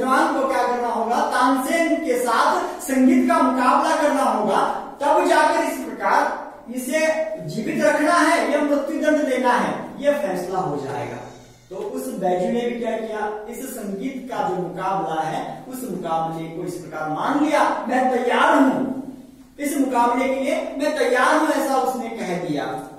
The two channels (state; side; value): identical; both; correlation 1.00